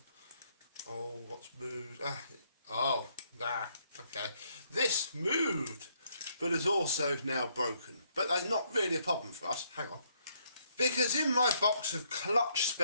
Oh, what's moved? Okay. This moved, but is also now broken. But that's not really a problem for us. Hang on. Because in my box of clutch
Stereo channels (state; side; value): inverted; both; correlation -0.71